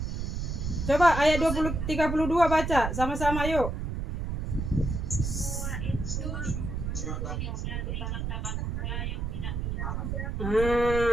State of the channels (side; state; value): right; noise; rumble, 3 dB below the sound